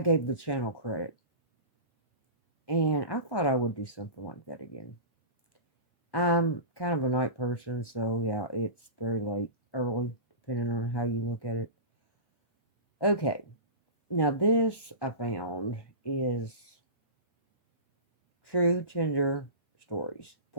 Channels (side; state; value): right; late; 1.1 ms